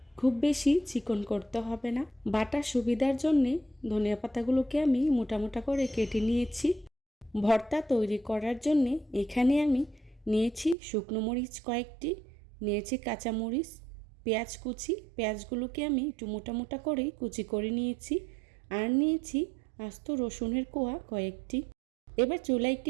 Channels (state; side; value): drops out; left; at 10.8 s